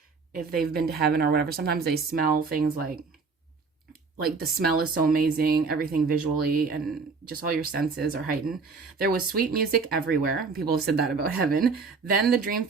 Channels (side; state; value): left; quieter; 4.8 dB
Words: if they've been to heaven or whatever, sometimes they smell things like the smell is so amazing, everything visually and just all your senses are heightened. There was sweet music everywhere. People have said that about heaven. Then the dream